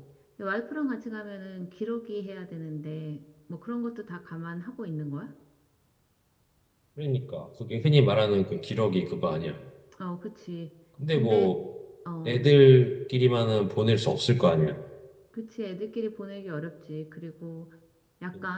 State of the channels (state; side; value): identical; both; correlation 1.00